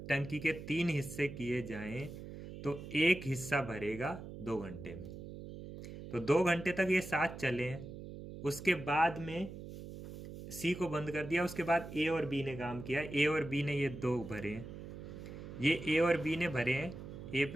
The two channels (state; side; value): noise; right; hum, 11 dB below the sound